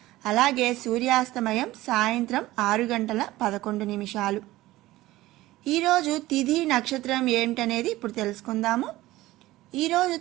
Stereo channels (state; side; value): quieter; left; 17.2 dB